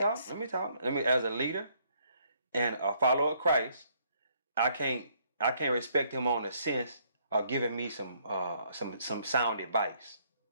Let me talk. As a leader and a follower of Christ, I can't respect him on the sense of giving me some sound advice.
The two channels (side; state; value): both; inverted; correlation -0.68